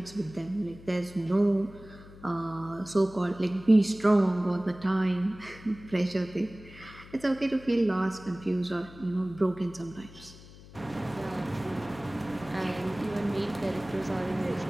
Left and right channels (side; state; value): left; noise; hum, 19 dB below the sound